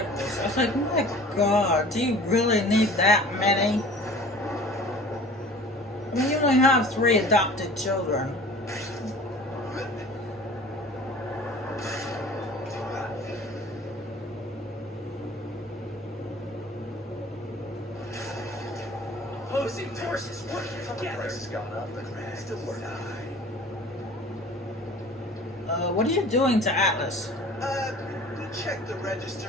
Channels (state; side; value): normal; both; correlation 0.45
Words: I was like, my God, do you really need that many? I mean, you only have 3 adopted children. Opposing forces working together. Price has gone up, but still working. What are you doing to Atlas? We checked the